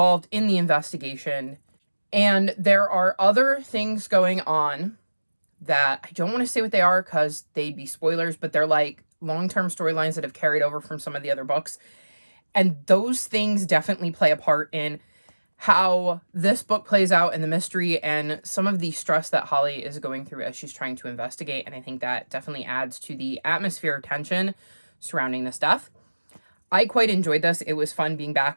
in the investigation, and there are other things going on that I don't want to say what they are because they'd be spoilers, but they're like long-term storylines that have carried over from some of the other books. And those things definitely play a part in how this book plays out in the mystery and some of the stress that Holly is going through as she's trying to investigate. And I think that definitely adds to the atmosphere of tension surrounding this death. I quite enjoyed this. It was fun being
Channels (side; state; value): both; inverted; correlation -1.00